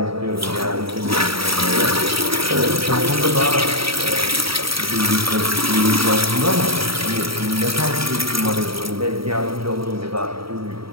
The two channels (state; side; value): late; left; 0.75 ms